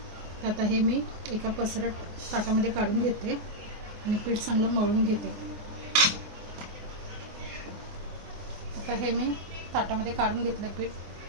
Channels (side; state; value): left; late; 24 ms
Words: तर आता हे मी एका पसरट ताटामध्ये काढून घेते आणि पीठ चांगलं मळून घेते. आता हे मी ताटामध्ये काढून घेतलं पीठ.